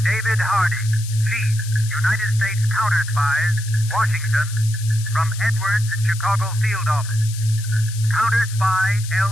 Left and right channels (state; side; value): noise; left; hiss, 13 dB below the sound